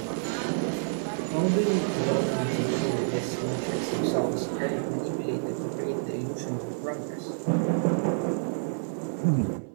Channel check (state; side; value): silent; left; 59 dB below the other